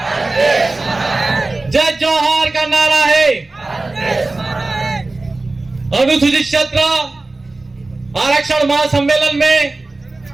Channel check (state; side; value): quieter; left; 3.2 dB